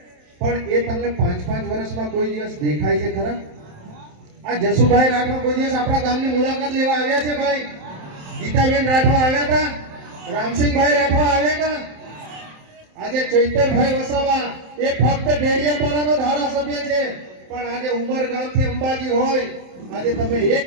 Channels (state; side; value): late; left; 27 ms